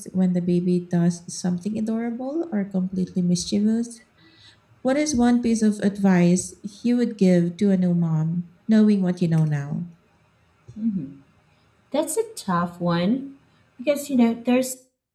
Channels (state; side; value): identical; both; correlation 1.00